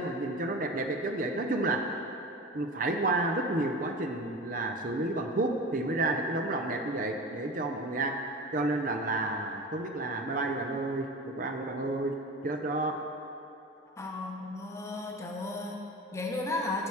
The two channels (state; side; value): normal; both; correlation 0.32